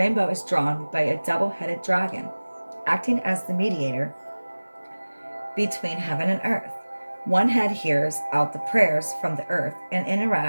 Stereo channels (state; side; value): inverted; both; correlation -1.00